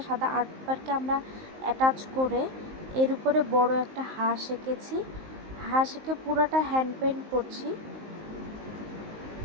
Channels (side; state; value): left; late; 19 ms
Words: সাদা আর্ট পেপারকে আমরা অ্যাটাচ করে এর উপরে বড় একটা হাঁস এঁকেছি। হাঁস এঁকে পুরাটা হ্যান্ড পেইন্ট করছি।